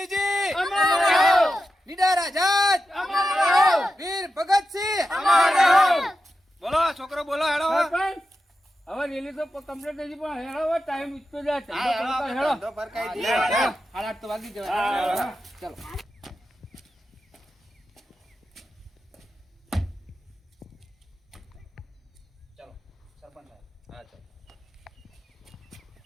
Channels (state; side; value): normal; both; correlation 0.90